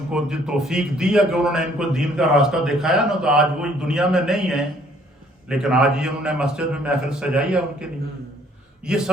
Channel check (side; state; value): both; normal; correlation 0.61